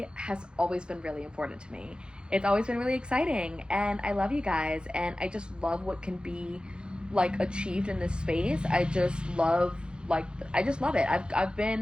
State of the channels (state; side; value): late; left; 0.050 ms